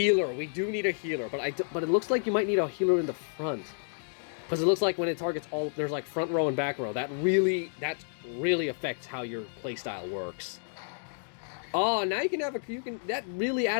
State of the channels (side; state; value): right; silent; digital silence